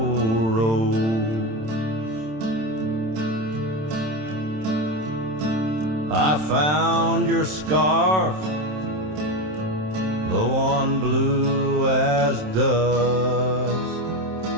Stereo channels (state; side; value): late; left; 27 ms